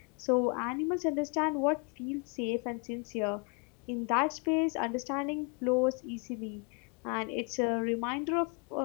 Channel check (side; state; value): right; quieter; 33.9 dB